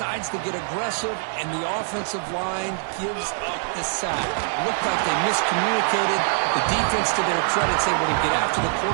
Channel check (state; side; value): silent; left; 57 dB below the other